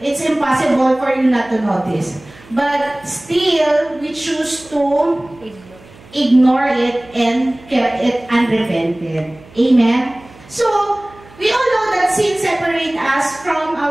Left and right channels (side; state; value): right; noise; hum, 23 dB below the sound